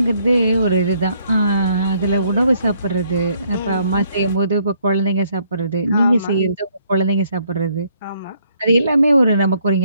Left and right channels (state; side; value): inverted; both; correlation -0.68